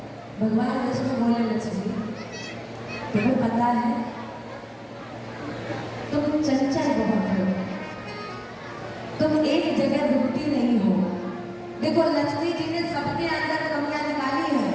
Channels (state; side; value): identical; both; correlation 1.00